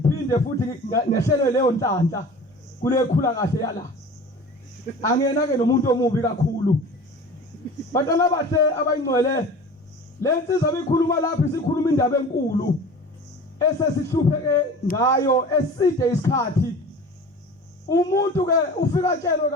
futhi ngehlele leyo nhlanhla kule khula kahle yala angena ke nomuntu omubi kakhulu bantwana bathe abayingcwele lensizwa bikhuluma lapha sikhuluma indaba enkulu esesihlupheke ngayo eside isikhathi umuntu ke ufika tshelwe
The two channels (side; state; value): both; normal; correlation 0.39